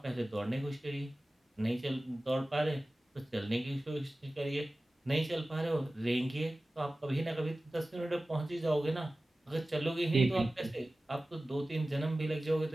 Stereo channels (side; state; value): both; normal; correlation 0.96